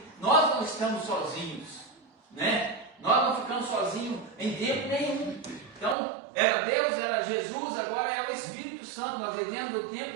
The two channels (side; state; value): left; drops out; at 6.0 s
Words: nós não estamos sozinhos, né? Nós não ficamos sozinhos em tempo nenhum. Então, era Deus, era Jesus, agora é o Espírito Santo. Nós vivemos o